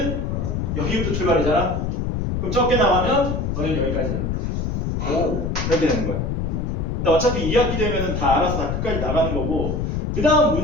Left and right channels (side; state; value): left; noise; rumble, 1 dB below the sound